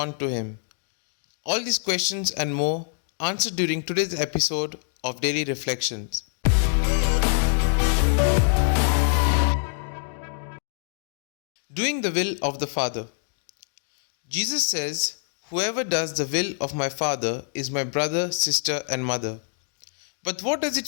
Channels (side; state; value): right; silent; digital silence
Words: to him? All these questions and more answered during today's episode of Daily Reflections. Doing the will of the Father. Jesus says, "Whoever does the will of my Father is my brother, sister, and mother." But what does